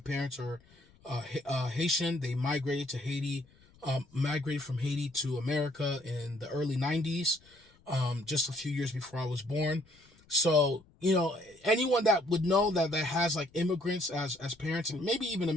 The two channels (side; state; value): left; noise; rumble, 29 dB below the sound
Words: are Haitian. They migrated to Haiti, migrated from Haiti to America in the early 90s, just a few years before I was born. So, anyone that would know that has like immigrants as parents and maybe even